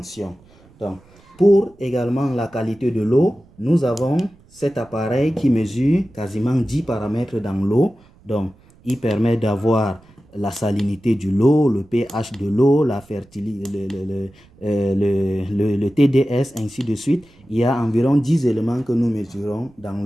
Donc, pour également la qualité de l'eau, nous avons cet appareil qui mesure quasiment 10 paramètres dans l'eau. Donc, il permet d'avoir la salinité de l'eau, le pH de l'eau, la fertilité, le TDS, ainsi de suite. Il y a environ 10 éléments que nous mesurons dans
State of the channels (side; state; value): right; noise; rumble, 28 dB below the sound